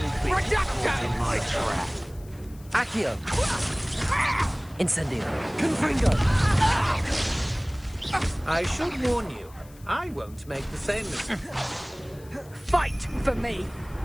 My trap. Accio. Incendio. Confringo! I should warn you, I won't make the same mistake. Fight for me!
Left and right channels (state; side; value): noise; left; hiss, 25 dB below the sound